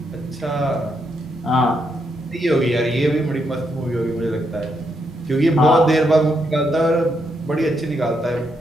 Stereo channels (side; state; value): both; normal; correlation 0.79